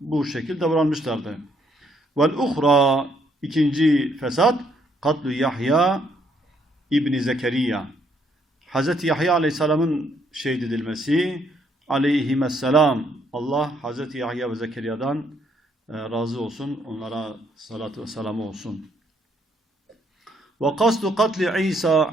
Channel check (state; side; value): normal; both; correlation 0.70